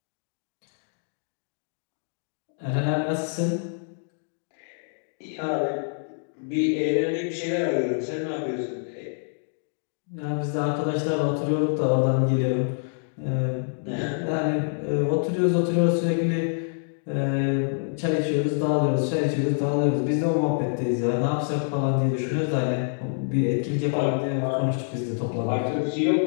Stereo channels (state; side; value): silent; right; digital silence